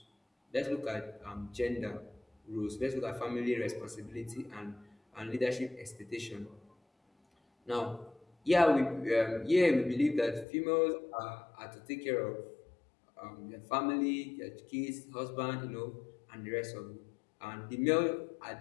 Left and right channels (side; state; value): right; drops out; at 10.5 s